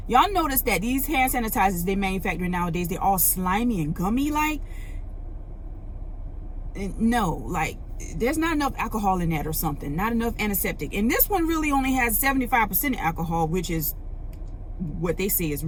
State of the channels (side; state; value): both; identical; correlation 1.00